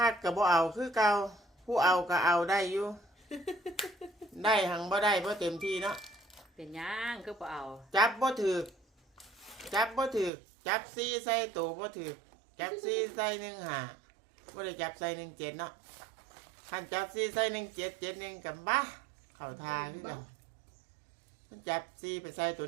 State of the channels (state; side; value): drops out; left; at 10.3 s